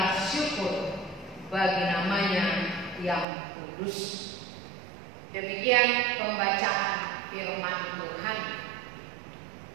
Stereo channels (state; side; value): drops out; left; at 3.2 s